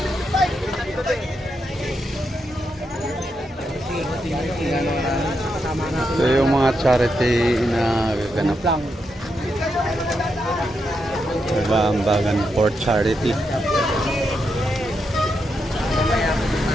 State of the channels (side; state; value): both; normal; correlation 0.83